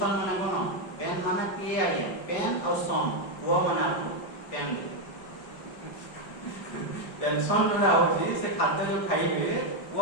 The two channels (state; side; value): late; right; 5.4 ms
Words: ମାନେ କ'ଣ? ପେନ୍ ମାନେ କିଏ ଆଜ୍ଞା? ପେନ୍ ଆଉ ସନ୍, ପୁଅ ମାନେ ଆପଣ ପେନ୍ ଦେବେ। ପେନସନ ଯୋଉଟା ହେଉଛି ସେ ଖାଦ୍ୟ ଯେଉଁ ଖାଇବେ,